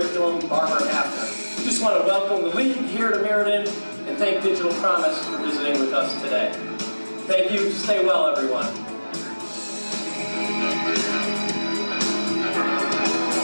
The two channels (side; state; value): both; inverted; correlation -1.00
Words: Barbara Hafner. We just want to welcome the league here to Meriden and thank Digital Promise for visiting with us today. Thank you. Stay well, everyone.